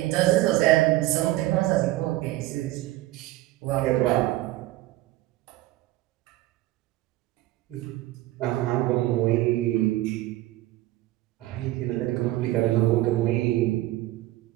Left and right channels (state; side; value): quieter; left; 16.9 dB